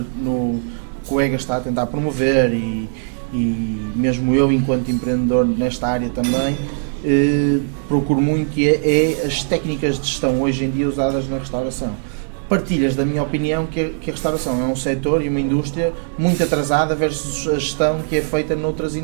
no que o EGA está a tentar promover e mesmo eu enquanto empreendedor nesta área também, procuro muito e é as técnicas de gestão hoje em dia usadas na restauração. Partilhas da minha opinião que a restauração é um setor e uma indústria muito atrasada versus a gestão que é feita noutras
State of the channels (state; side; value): silent; left; digital silence